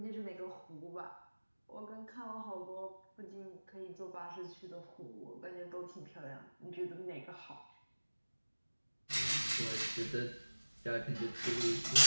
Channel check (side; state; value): both; inverted; correlation -1.00